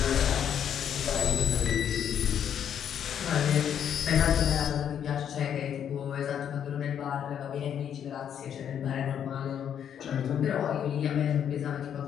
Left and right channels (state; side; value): quieter; right; 9.0 dB